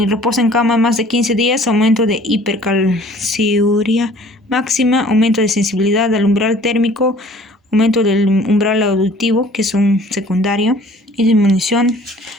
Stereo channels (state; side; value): normal; both; correlation 0.52